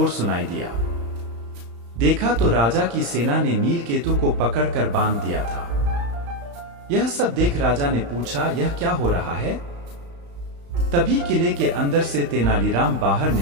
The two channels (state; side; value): late; left; 35 ms